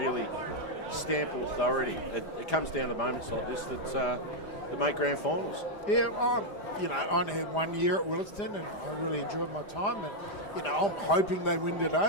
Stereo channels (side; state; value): right; late; 5.0 ms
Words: stamp authority? It comes down to moments like this that make grand finals. Yeah, I only had 1 year at Willaston, and I really enjoyed my time. And I'm hoping they win